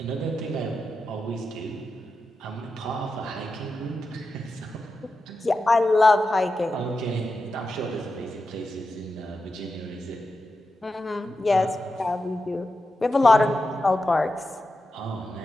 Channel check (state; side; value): normal; both; correlation 0.90